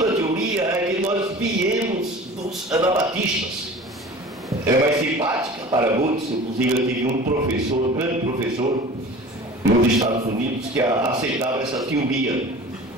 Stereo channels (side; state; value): both; normal; correlation 0.40